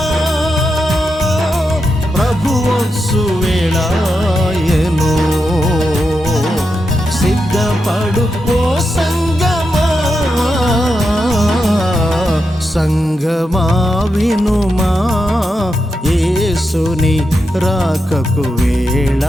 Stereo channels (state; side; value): normal; both; correlation 0.87